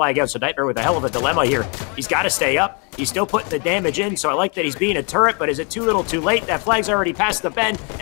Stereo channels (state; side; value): quieter; right; 34.4 dB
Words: out, so Nightmare with a hell of a dilemma here. He's got to stay up. He's still putting the damage in, so I like that he's being a turret, but is it too little too late? That flag's already past the bend,